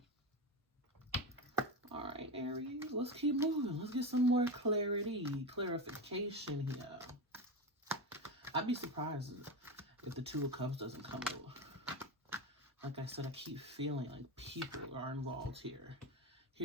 All right, Aries, let's keep moving. Let's get some more clarification here. I'd be surprised if the Two of Cups doesn't come out. Like I said, I keep feeling like people are involved here.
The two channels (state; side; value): normal; both; correlation 0.18